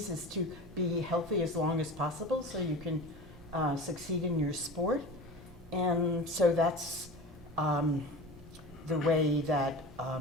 is to be healthy as long as possible so you can succeed in your sport. And so that's the way that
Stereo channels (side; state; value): both; normal; correlation 0.33